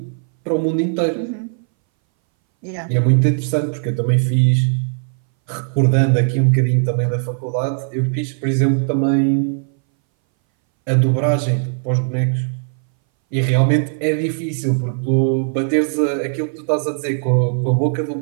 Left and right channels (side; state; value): left; silent; 62 dB below the other